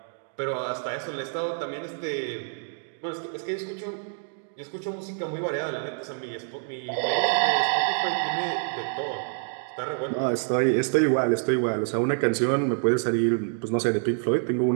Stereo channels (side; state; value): left; silent; 60 dB below the other